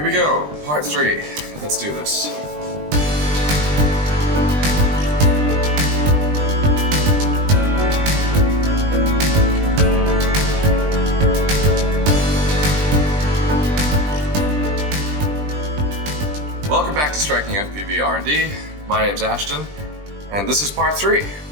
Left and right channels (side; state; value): left; late; 20 ms